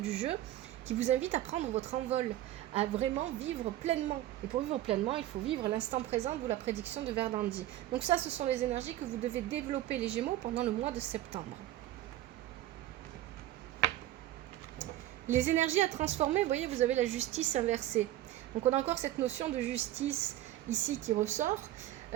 jeu, qui vous invite à prendre votre envol, à vraiment vivre pleinement. Et pour vivre pleinement, il faut vivre l'instant présent, d'où la prédiction de Verdandi. Donc ça, ce sont les énergies que vous devez développer, les Gémeaux, pendant le mois de septembre. Les énergies à transformer, vous voyez, vous avez la justice inversée. Donc on a encore cette notion de justice ici qui ressort.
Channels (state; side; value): quieter; left; 14.1 dB